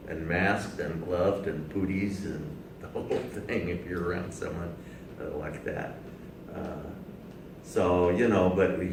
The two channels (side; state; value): both; identical; correlation 1.00